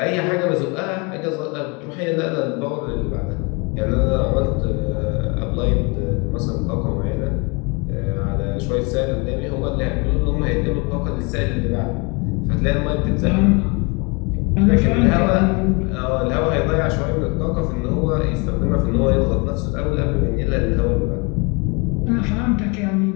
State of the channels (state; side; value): quieter; right; 30.2 dB